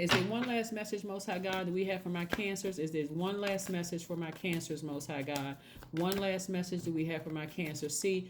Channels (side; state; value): both; identical; correlation 1.00